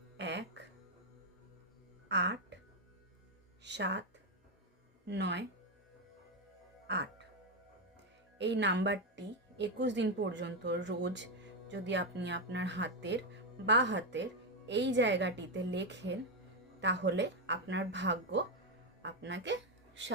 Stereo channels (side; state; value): both; normal; correlation 0.06